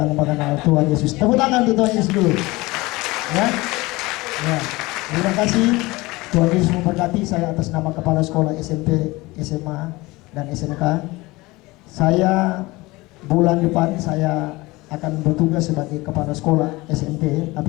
mengenal Tuhan Yesus. Tepuk tangan untuk Tuhan Yesus dulu. Ya. Ya. Terima kasih. Tuhan Yesus memberkati. Saya atas nama Kepala Sekolah SMP, SMA, dan SMK. Saya bulan depan saya akan bertugas sebagai Kepala Sekolah SMP,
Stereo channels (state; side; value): quieter; right; 21.6 dB